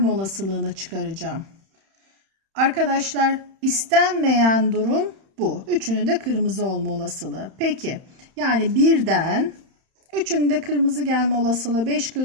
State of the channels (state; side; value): late; left; 31 ms